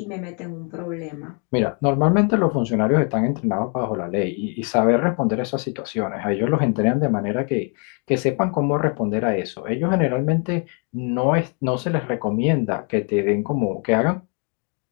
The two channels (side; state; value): right; quieter; 37.9 dB